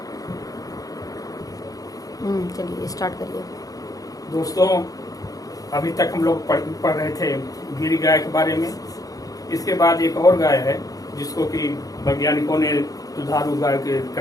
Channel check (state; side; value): late; right; 0.17 ms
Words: चलिए स्टार्ट करिए। दोस्तों, अभी तक हम लोग पढ़ रहे थे गिरी गाय के बारे में। इसके बाद एक और गाय है जिसको कि वैज्ञानिकों ने दुधारू गाय के